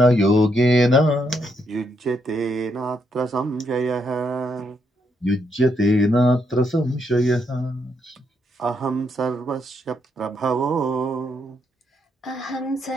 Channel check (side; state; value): both; normal; correlation 0.77